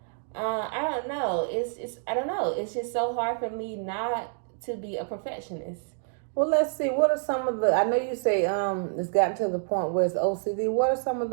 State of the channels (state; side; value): silent; left; digital silence